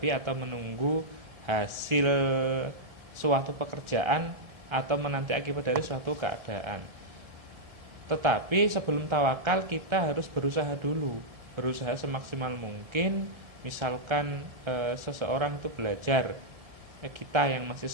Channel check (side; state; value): left; late; 1.7 ms